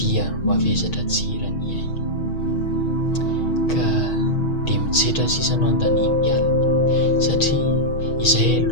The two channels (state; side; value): late; right; 6.3 ms